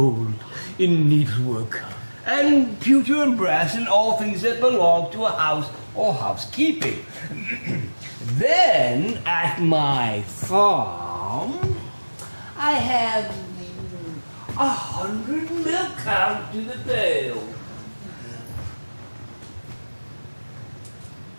in needlework, and pewter and brass and all things that belong to a house or housekeeping. Then, at my farm, I have 100 milk cows to the pail.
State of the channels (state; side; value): inverted; both; correlation -1.00